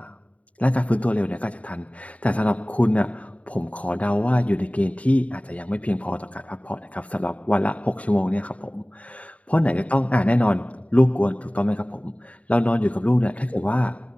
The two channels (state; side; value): late; right; 0.067 ms